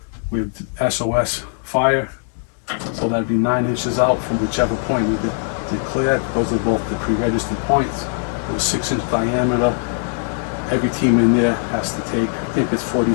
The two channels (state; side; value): silent; right; 66 dB below the other